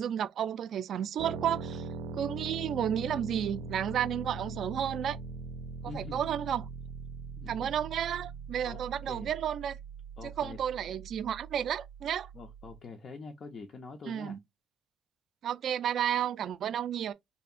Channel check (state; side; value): quieter; left; 8.2 dB